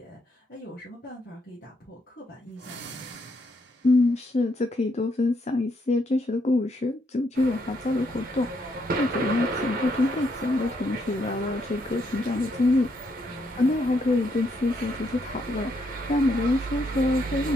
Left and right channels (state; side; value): normal; both; correlation 0.75